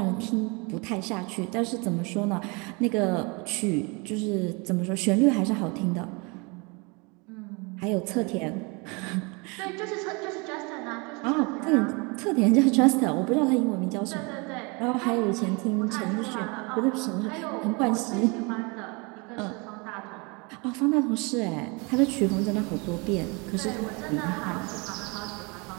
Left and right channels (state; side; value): quieter; left; 29.5 dB